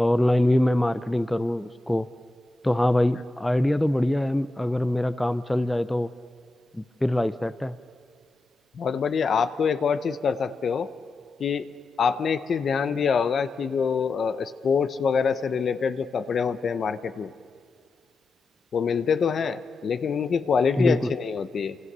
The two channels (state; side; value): quieter; right; 3.2 dB